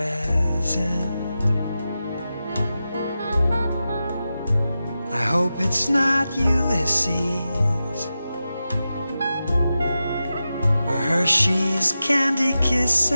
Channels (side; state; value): both; inverted; correlation -0.92